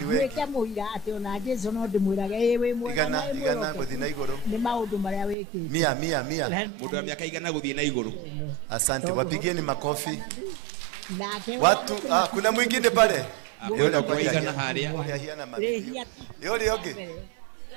wewe. Weka muira ati ona Jesu no ndimwiraga ewe mwe. Igana guthi na iguru. Ni maundu maria wekite. 100. Mundu wa miaka 100 guthie na iguru. Asante, wapigieni makofi. Nake Watu kuna mwingine pale. Yule kwa igana haria. Yule yoge.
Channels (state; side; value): drops out; left; at 5.4 s